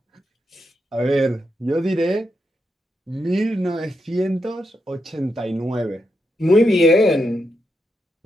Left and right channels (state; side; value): normal; both; correlation 0.84